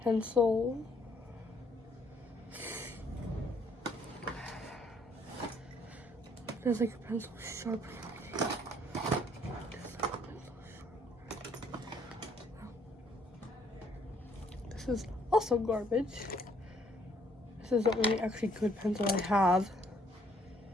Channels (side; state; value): both; normal; correlation 0.65